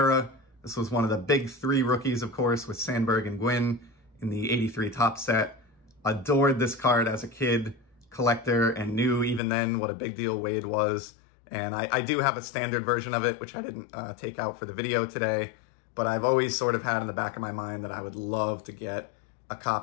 This was one of the big 3 rookies, of course, with Sandberg and Gwynn in the '83 Topps set. Adored this card as a kid collector and knew even then what a big deal Wade was. And I do have a standard version of it, which I didn't take out for the video today, but I've always sort of had in the back of my mind that I would love to get a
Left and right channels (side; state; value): right; drops out; at 9.4 s